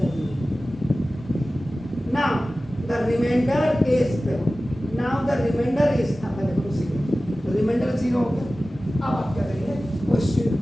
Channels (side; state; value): both; normal; correlation 0.96